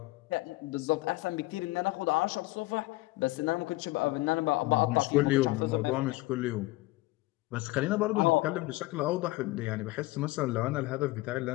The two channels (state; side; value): quieter; right; 20.2 dB